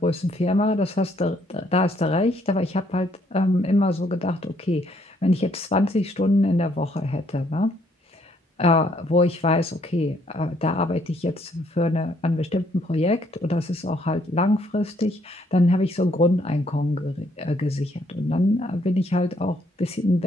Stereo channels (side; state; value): both; normal; correlation 0.68